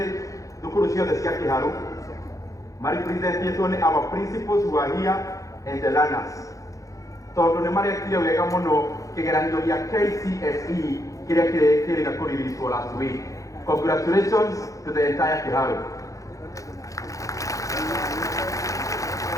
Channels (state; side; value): late; right; 0.16 ms